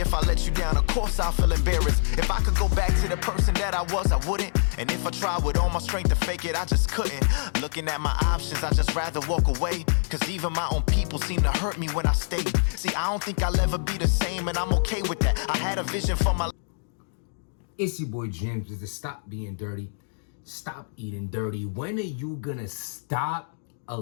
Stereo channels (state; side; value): silent; right; digital silence